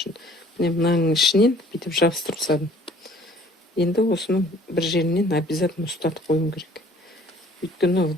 Міне мынаның ішінен бүйтіп жабыстырып тастадым. Енді осыны бір жерінен обязательно ұстатып қоюым керек. Өйткені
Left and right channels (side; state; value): both; normal; correlation 0.54